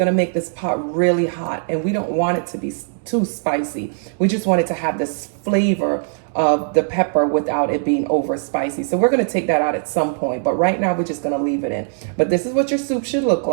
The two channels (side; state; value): left; silent; digital silence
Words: to make this pot really hot. And we don't want it to be too spicy. We just want it to have this flavor of the pepper without it being over spicy. So we're going to take that out at some point. But right now, we're just going to leave it in. But this is what your soup should look